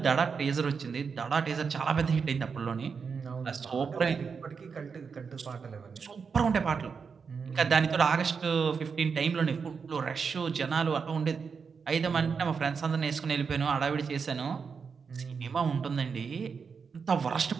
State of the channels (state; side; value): quieter; left; 5.7 dB